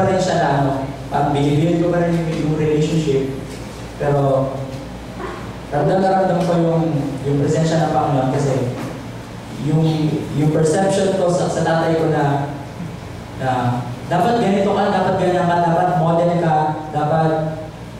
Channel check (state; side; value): identical; both; correlation 1.00